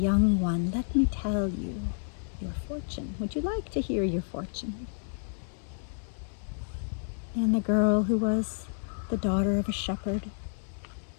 one, let me tell you your fortune. Would you like to hear your fortune?" And the girl, who was the daughter of a shepherd,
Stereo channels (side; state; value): right; silent; digital silence